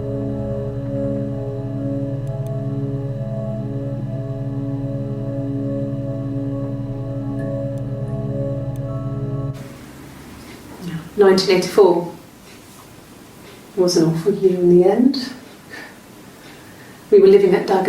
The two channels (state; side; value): identical; both; correlation 1.00